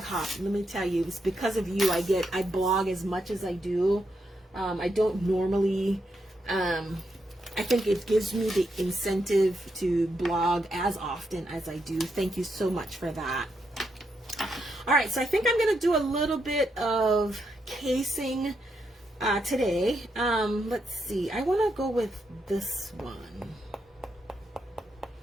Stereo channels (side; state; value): both; normal; correlation 0.81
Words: Let me tell you, it's because of you I blog as much as I do. I don't normally, I think it gives me the incentive to blog as often as I do. Thank you so much for that. All right, so I think I'm going to do a little bit of casing today. Let's see. I want to go with this one.